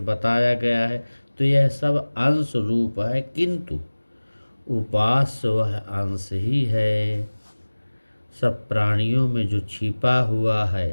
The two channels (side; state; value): both; inverted; correlation -1.00